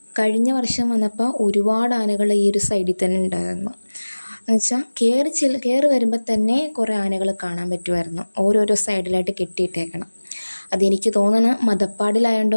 കഴിഞ്ഞ വർഷം വന്നപ്പോൾ ഒരുപാട് ആനകൾ ഈ ഒരു സൈഡിൽ തന്നെ ഉണ്ടായിരുന്നു. എന്നുവെച്ചാൽ കയറി വരുമ്പോൾ തന്നെ കുറേ ആനകൾ കാണാൻ പറ്റുമായിരുന്നു, ഓരോരോ സൈഡിലായിട്ട് കെട്ടിയിട്ടേക്കണം. അതെനിക്ക് തോന്നണം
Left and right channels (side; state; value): both; inverted; correlation -1.00